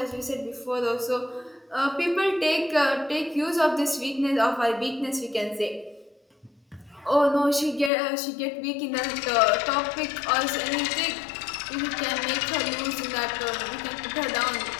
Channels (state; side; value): drops out; right; at 7.9 s